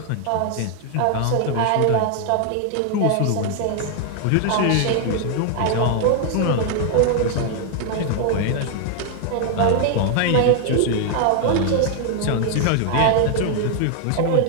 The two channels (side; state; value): both; different; correlation 0.00